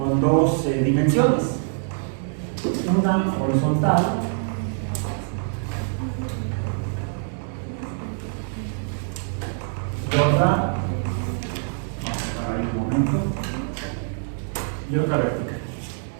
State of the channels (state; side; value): silent; left; 62 dB below the other